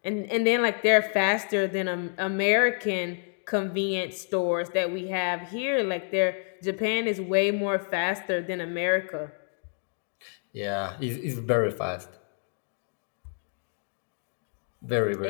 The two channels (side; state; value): right; silent; 57 dB below the other